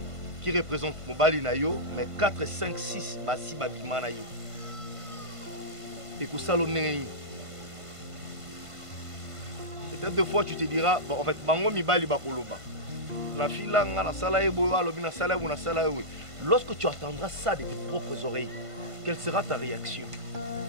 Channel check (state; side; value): late; left; 1.5 ms